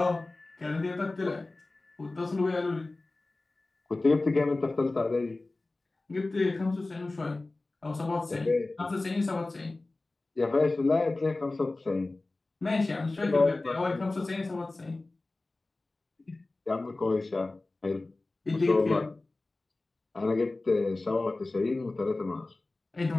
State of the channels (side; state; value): right; quieter; 3.1 dB